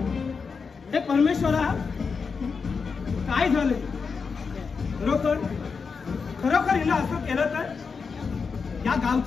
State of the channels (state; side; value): quieter; right; 5.3 dB